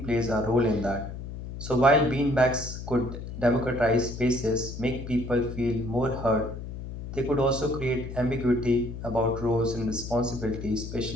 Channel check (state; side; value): noise; left; hum, 9 dB below the sound